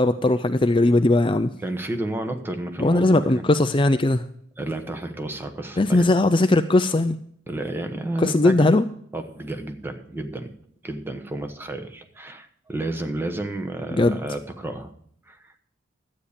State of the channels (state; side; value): normal; both; correlation 0.78